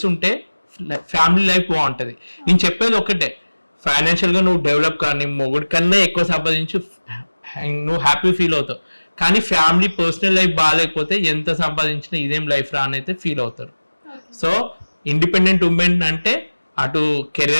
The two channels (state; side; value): inverted; both; correlation -1.00